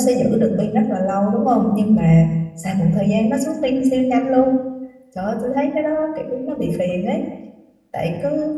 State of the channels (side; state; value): both; identical; correlation 1.00